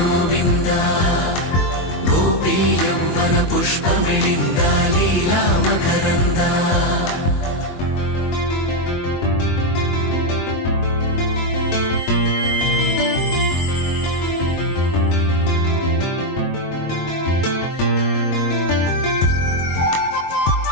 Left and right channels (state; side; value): late; right; 22 ms